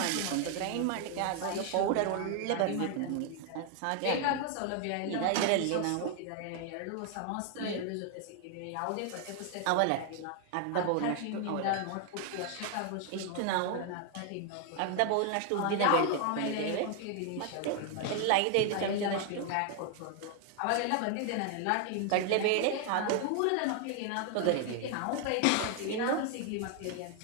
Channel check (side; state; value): both; different; correlation 0.00